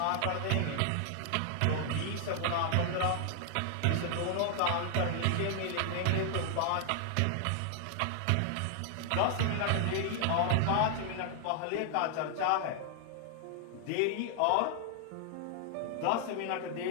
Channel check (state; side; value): different; both; correlation 0.00